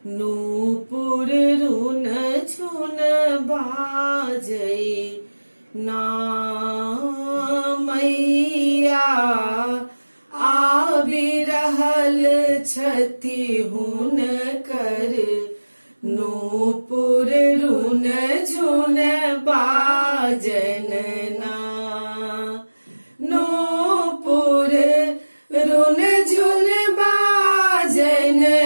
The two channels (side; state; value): both; inverted; correlation -1.00